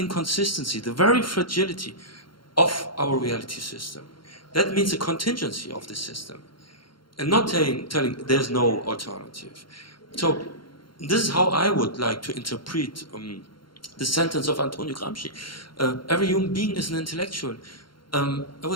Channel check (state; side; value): late; right; 0.73 ms